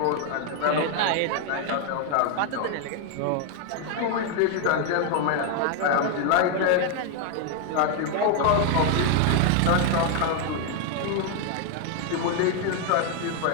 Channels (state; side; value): different; both; correlation 0.01